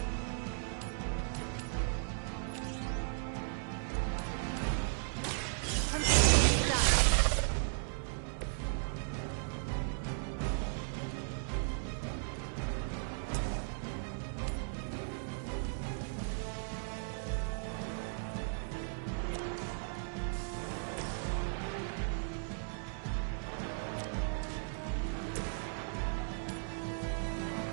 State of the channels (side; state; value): left; silent; digital silence